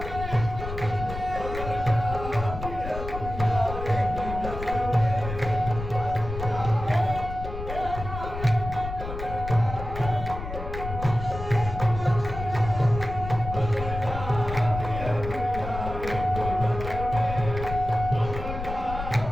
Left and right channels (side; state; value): left; noise; rumble, 8 dB below the sound